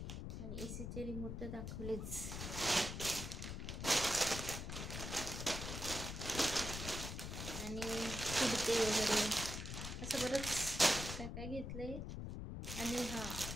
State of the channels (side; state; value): left; noise; rumble, 5 dB below the sound